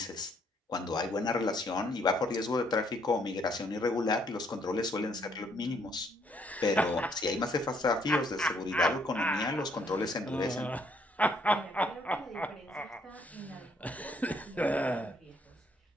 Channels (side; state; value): both; normal; correlation 0.68